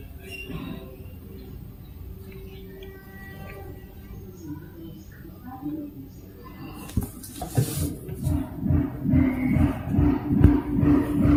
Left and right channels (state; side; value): identical; both; correlation 1.00